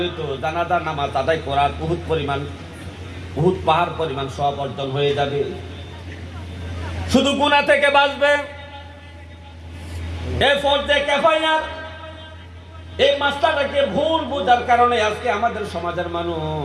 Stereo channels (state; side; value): identical; both; correlation 1.00